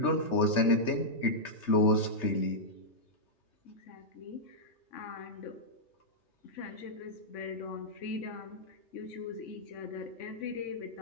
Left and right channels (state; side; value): late; right; 3.3 ms